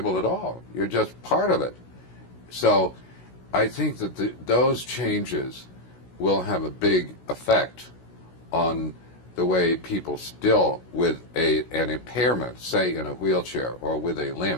at all. You're just part of it. So I think that those changes will have a big effect on the way people still with an impairment, say in a wheelchair or with a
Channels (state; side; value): late; right; 16 ms